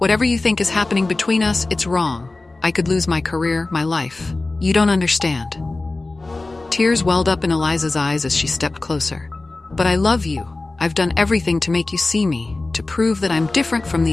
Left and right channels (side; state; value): right; quieter; 3.2 dB